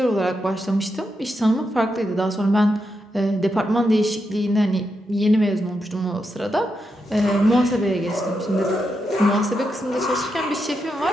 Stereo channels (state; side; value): normal; both; correlation 0.85